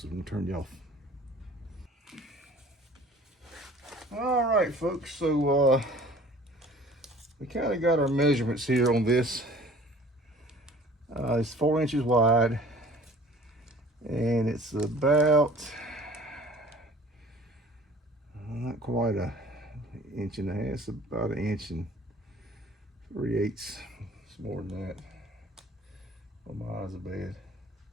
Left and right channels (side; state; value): both; normal; correlation 0.49